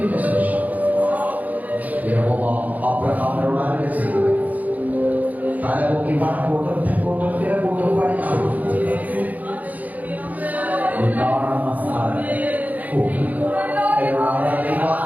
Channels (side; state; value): left; late; 0.078 ms